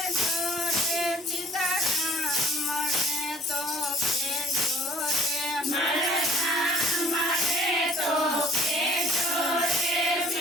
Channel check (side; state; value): both; normal; correlation 0.55